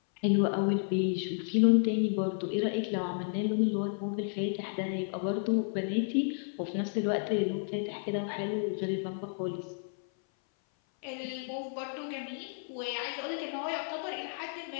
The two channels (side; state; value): right; silent; 56 dB below the other